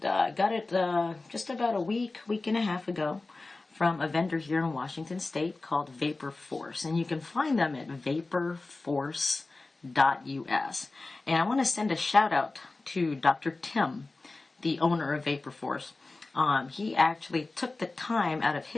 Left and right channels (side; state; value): right; quieter; 3.4 dB